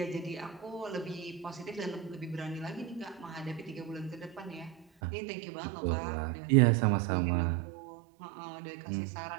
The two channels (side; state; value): left; drops out; at 4.9 s